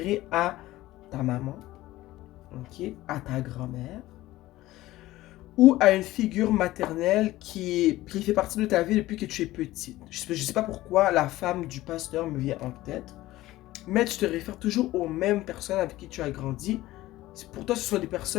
à ta maman, ok, à ta grand-mère, ou à une figure maternelle qui fait partie de ta vie depuis que tu es petite. Je sais pas pourquoi la femme du pasteur me vient en tête, mais tu te réfères toujours aux mêmes personnes avec qui tu as grandi. Pour toi, ce sont des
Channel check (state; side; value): quieter; right; 16.8 dB